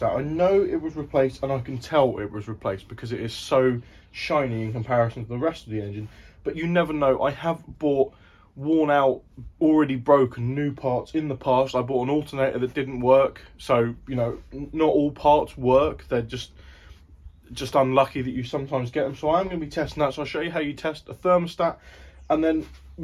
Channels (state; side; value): identical; both; correlation 1.00